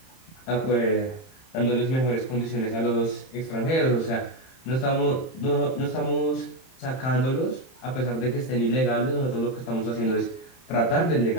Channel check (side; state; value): right; late; 31 ms